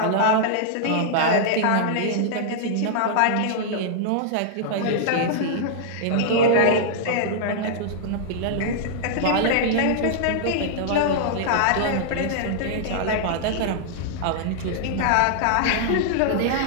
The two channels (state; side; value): different; both; correlation -0.01